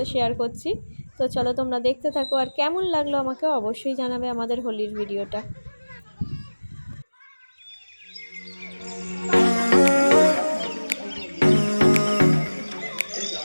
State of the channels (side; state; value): both; inverted; correlation -1.00